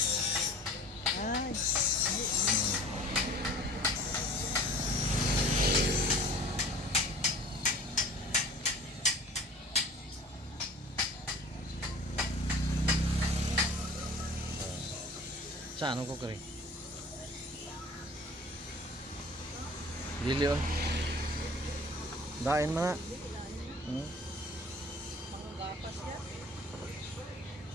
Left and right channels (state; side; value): normal; both; correlation 0.45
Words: Ay. Saan ko kari? Dili oh. Dain mana?